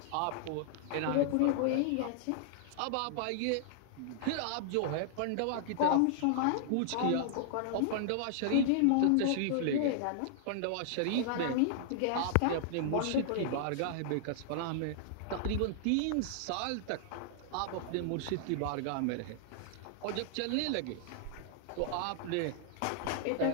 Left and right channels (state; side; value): different; both; correlation -0.01